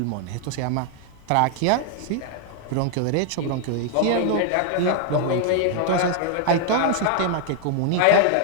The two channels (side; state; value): both; different; correlation 0.00